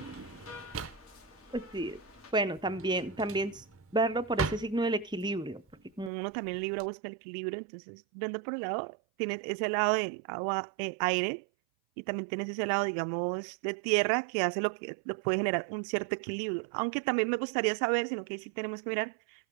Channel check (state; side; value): drops out; left; at 6.1 s